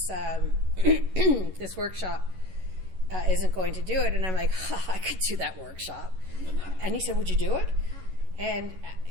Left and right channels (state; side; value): late; left; 11 ms